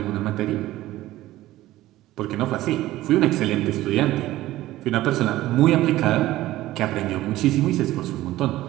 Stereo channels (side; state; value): left; quieter; 15.9 dB